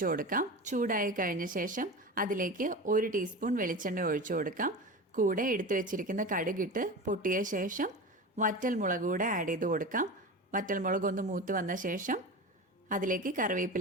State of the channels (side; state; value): both; normal; correlation 0.28